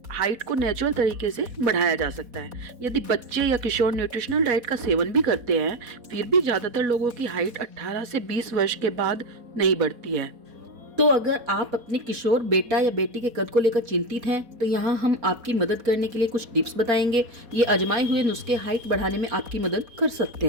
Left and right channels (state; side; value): late; left; 4.1 ms